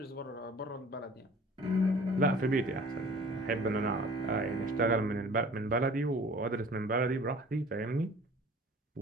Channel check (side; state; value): both; normal; correlation 0.47